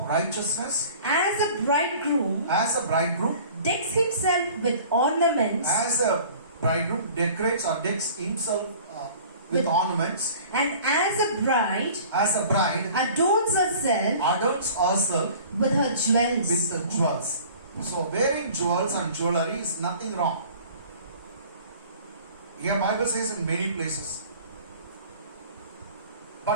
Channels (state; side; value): inverted; both; correlation -0.46